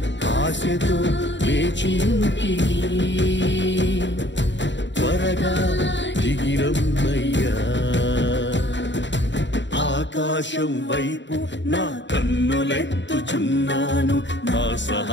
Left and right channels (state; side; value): late; right; 0.53 ms